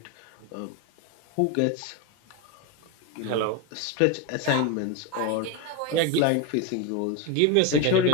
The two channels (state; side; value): different; both; correlation 0.03